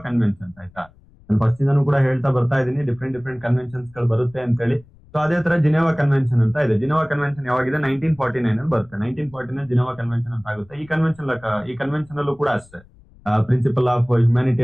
ಕನ್ವೆನ್ಷನ್ ಆಯ್ತಾ. ನಾನು ಫಸ್ಟ್ ಇಂದನೂ ಕೂಡ ಹೇಳ್ತಾ ಬರ್ತಾ ಇದ್ದೀನಿ, ಡಿಫ್ರೆಂಟ್ ಕನ್ವೆನ್ಷನ್ಸ್ ಗಳು ಬರುತ್ತೆ ಅಂತ ಹೇಳಿ. ಸೊ ಅದೇ ತರ ಜಿನೆವಾ ಕನ್ವೆನ್ಷನ್ ಅಂತ ಇದೆ. Geneva convention ಯಾವಾಗಿದೆ? 1949 ಅಲ್ಲಿ ಬರುತ್ತೆ. 1949 ಜಿನೆವಾ ಕನ್ವೆನ್ಷನ್ ಅಂತ ಆಗುತ್ತೆ. ಈ ಕನ್ವೆನ್ಷನ್ ಅಲ್ಲೂ ಕೂಡ ಅಷ್ಟೇ, ಪ್ರಿನ್ಸಿಪಲ್ ಆಫ್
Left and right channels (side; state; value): left; noise; rumble, 27 dB below the sound